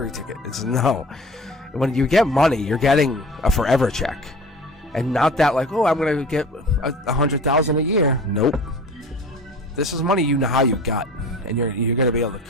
ticket." It's no. When you get money, you're getting a forever check, and not that like, "Oh, I'm gonna get $100,000 a year." Nope. This is money you know how you got, and you're going to be able to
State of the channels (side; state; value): both; normal; correlation 0.40